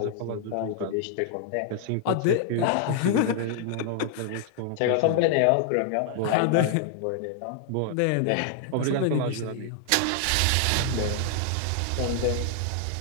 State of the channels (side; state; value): both; different; correlation 0.00